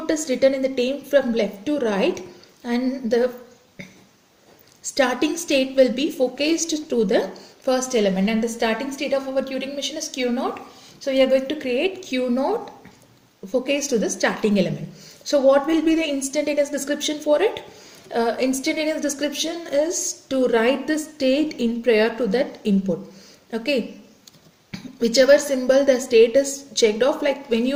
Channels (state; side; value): identical; both; correlation 1.00